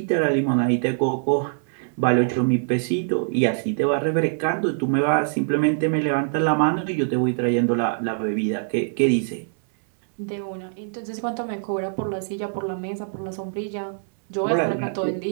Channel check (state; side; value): silent; left; 63 dB below the other